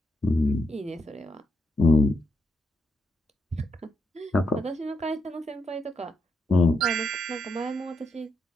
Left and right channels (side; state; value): both; normal; correlation 0.80